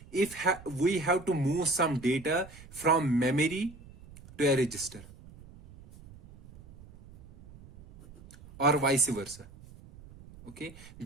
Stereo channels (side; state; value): right; noise; rumble, 20 dB below the sound